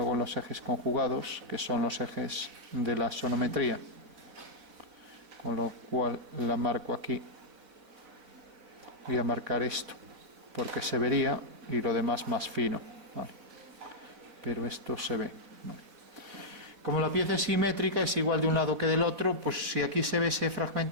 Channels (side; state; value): left; late; 4.0 ms